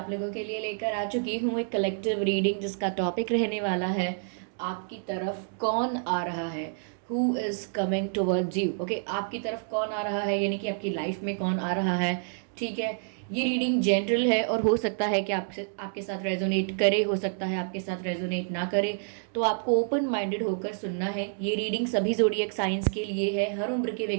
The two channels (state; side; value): silent; left; digital silence